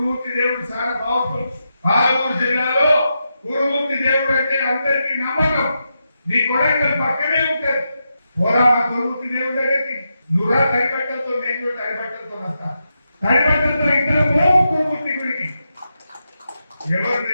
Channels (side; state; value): both; inverted; correlation -0.86